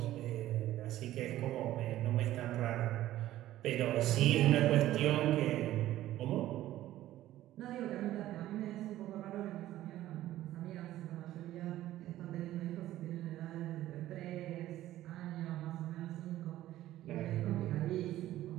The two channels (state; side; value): quieter; left; 14.2 dB